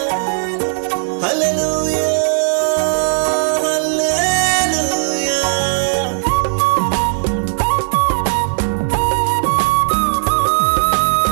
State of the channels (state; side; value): silent; left; 69 dB below the other